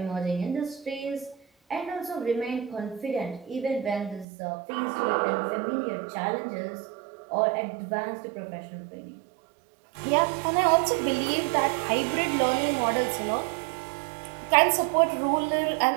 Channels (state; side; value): drops out; left; at 4.2 s